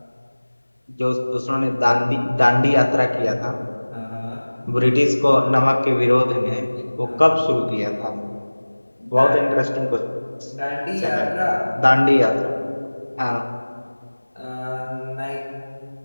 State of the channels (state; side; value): inverted; both; correlation -1.00